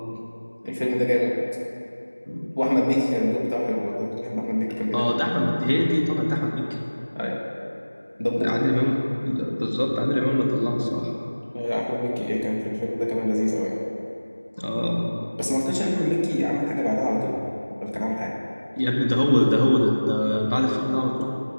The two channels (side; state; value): both; inverted; correlation -1.00